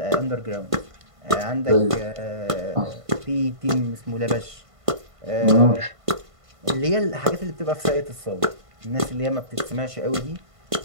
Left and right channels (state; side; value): late; left; 1.5 ms